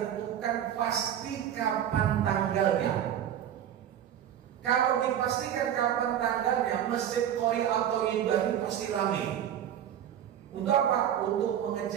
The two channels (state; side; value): quieter; left; 10.2 dB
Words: pasti kapan tanggalnya. Kalau dipastikan kapan tanggalnya, Masjid Qori atau Ibrahim pasti ramai. Untuk apa? Untuk